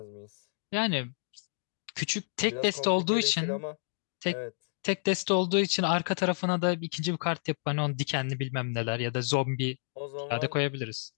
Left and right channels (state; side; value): silent; right; digital silence